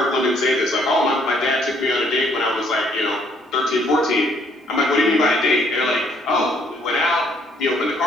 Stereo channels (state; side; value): normal; both; correlation 0.65